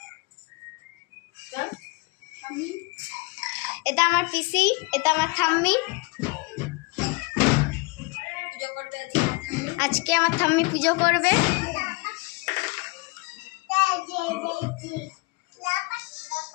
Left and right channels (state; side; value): quieter; right; 26.9 dB